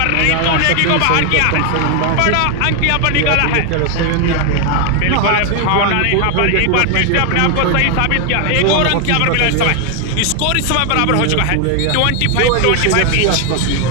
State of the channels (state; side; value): different; both; correlation 0.00